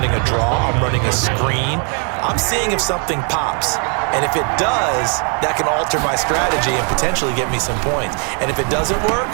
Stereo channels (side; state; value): left; quieter; 39.8 dB